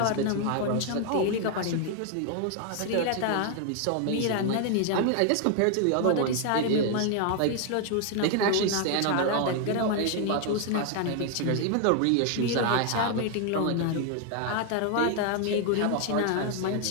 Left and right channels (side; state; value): both; different; correlation 0.00